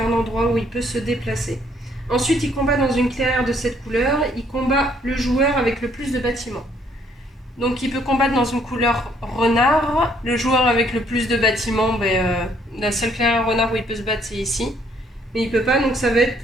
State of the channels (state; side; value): normal; both; correlation 0.66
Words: endroit où il peut se déplacer. Ensuite, il combat dans une clairière de cette couleur, il combat le joueur avec le plus de bâtiments. Donc il peut combattre dans une couleur renard. Le joueur avec le plus de bâtiments, la seule clairière renard où il peut se battre, c'est ici. Mais il peut pas, donc ça va être